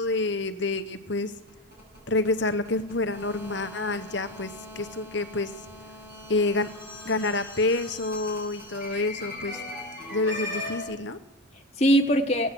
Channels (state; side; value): normal; both; correlation 0.17